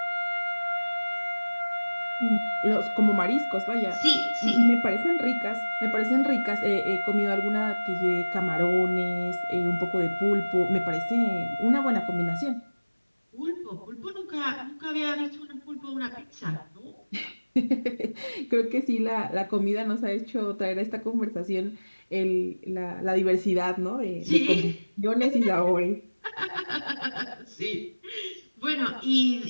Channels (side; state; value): both; inverted; correlation -1.00